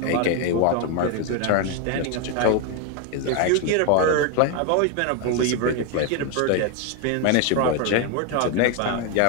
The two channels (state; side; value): different; both; correlation 0.01